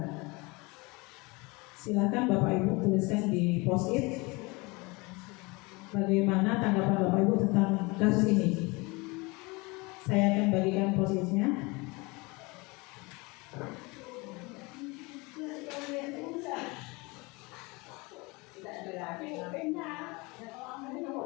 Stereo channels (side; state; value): right; quieter; 25.8 dB